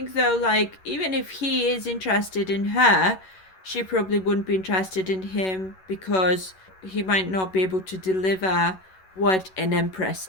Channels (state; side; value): late; right; 11 ms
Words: though, like, even if he is interested in her, she probably wouldn't be interested in him because he might not be able to deliver what an